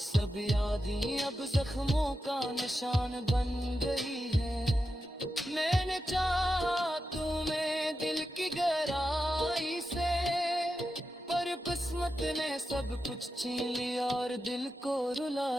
यादें अब जख्मों का निशान बन गई है। मैंने चाहा तुम्हें दिल की गहराई से, पर किस्मत ने सब कुछ छीन लिया और दिल को रुला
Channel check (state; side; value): normal; both; correlation 0.89